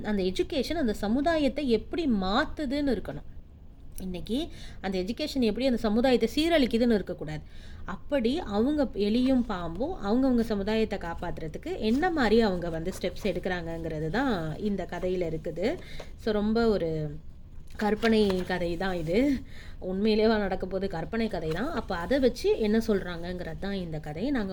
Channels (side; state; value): both; identical; correlation 1.00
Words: அந்த எஜுகேஷன் அந்த சமுதாயத்தை எப்படி மாற்றுதுன்னு இருக்கணும். இன்றைக்கி அந்த எஜுகேஷன் எப்படி அந்த சமுதாயத்தை சீரழிக்குதுன்னு இருக்கக்கூடாது. அப்படி அவங்க எலியும் பாம்பும் அவங்கவுங்க சமுதாயத்தை காப்பாற்றுறதுக்கு என்ன மாதிரி அவங்க வந்து ஸ்டெப்ஸ் எடுக்கிறாங்கங்கிறது தான் இந்த கதையில் இருக்குது. ஸோ ரொம்ப ஒரு கற்பனை கதை தான் இது. உண்மையிலேயே நடக்க போது கற்பனை கதை தான். அப்போ அதை வச்சு என்ன சொல்கிறாங்கங்கிறது தான் இந்த கதை.